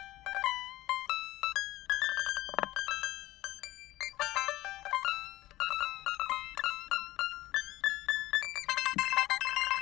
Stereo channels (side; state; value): right; quieter; 17.0 dB